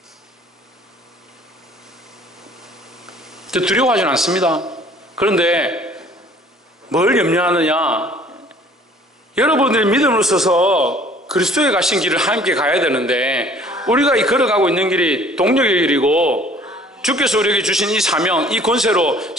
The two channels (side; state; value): both; normal; correlation 0.54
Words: 두려워하지는 않습니다. 그런데 뭘 염려하느냐? 여러분들이 믿음으로 서서 그리스도에 가신 길을 함께 가야 되는데, 우리가 이 걸어가고 있는 길이 동력의 길이고 주께서 우리에게 주신 이 사명, 이 권세로